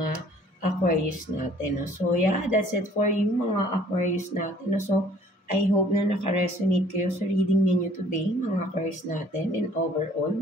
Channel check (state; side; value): normal; both; correlation 0.56